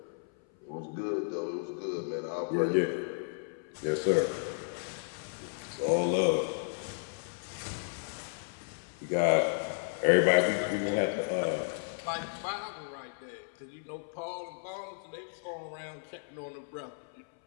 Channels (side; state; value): right; silent; 56 dB below the other